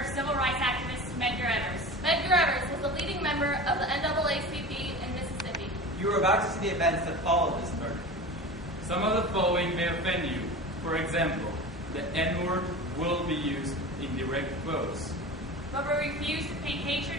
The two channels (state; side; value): normal; both; correlation 0.33